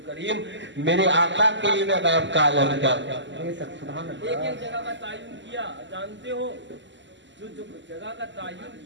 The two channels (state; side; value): late; left; 0.54 ms